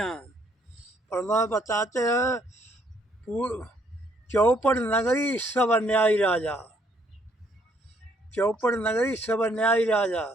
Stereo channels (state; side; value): normal; both; correlation 0.67